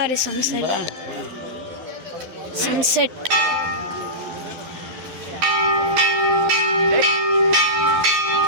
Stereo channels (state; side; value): late; left; 12 ms